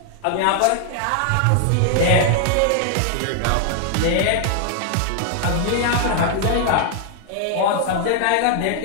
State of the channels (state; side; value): different; both; correlation 0.00